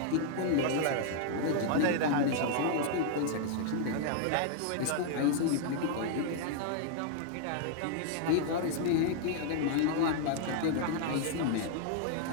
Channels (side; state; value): both; different; correlation 0.00